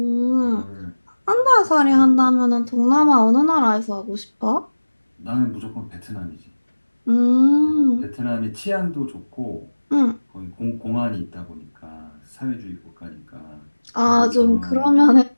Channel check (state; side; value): inverted; both; correlation -1.00